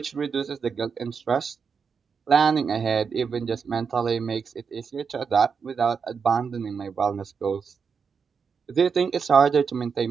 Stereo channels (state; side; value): quieter; left; 6.0 dB